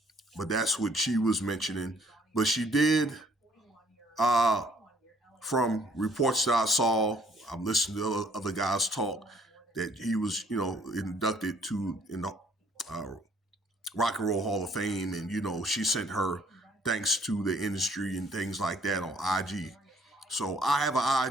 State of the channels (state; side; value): normal; both; correlation 0.62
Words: But that's what she was mentioning. But she did, from reports that I saw, I'm listening to other guys talk, that he was, inducted in the Rock and Roll Hall of Fame. And, she sent her thanks to the industry and things like that on IG. So I have an